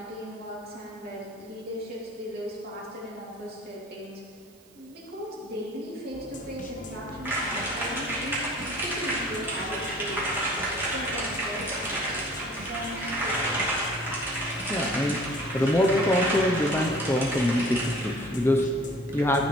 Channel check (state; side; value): noise; right; hiss, 28 dB below the sound